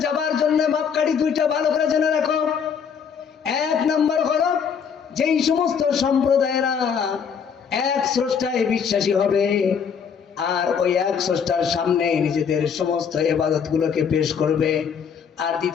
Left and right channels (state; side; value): quieter; right; 6.9 dB